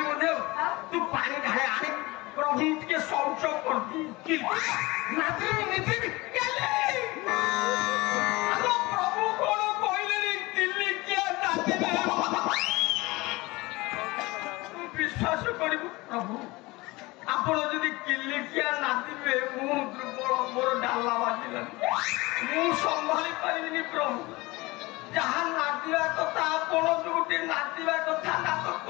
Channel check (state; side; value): quieter; right; 22.2 dB